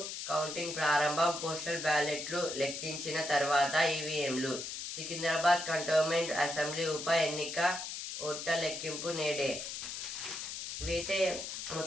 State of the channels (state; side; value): noise; left; hiss, 6 dB below the sound